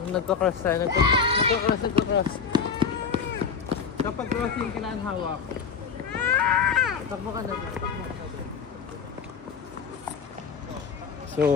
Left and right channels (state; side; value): quieter; right; 6.2 dB